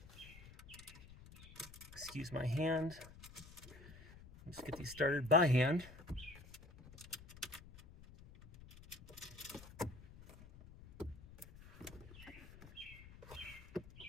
Excuse my hand. Let's get these started by hand.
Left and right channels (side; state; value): left; noise; rumble, 17 dB below the sound